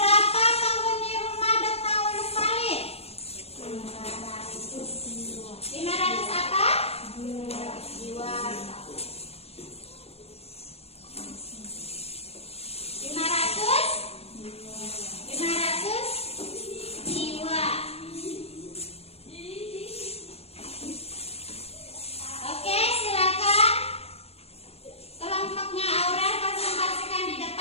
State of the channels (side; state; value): right; late; 0.29 ms